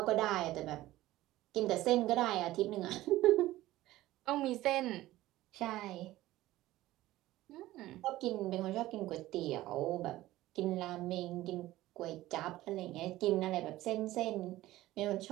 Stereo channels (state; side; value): quieter; left; 16.3 dB